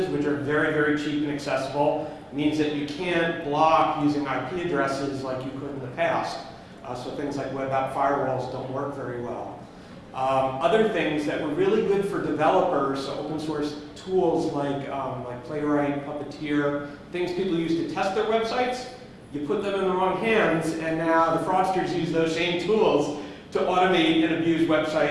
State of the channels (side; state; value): both; identical; correlation 1.00